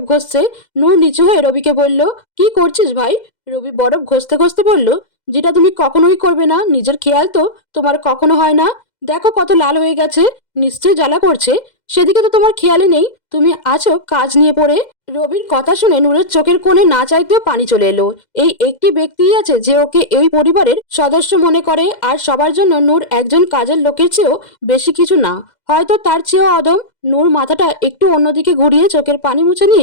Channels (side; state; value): right; late; 2.0 ms